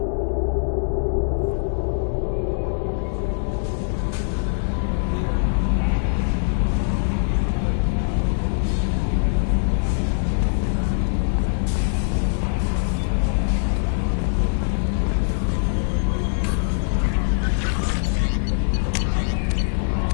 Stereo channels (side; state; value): right; silent; digital silence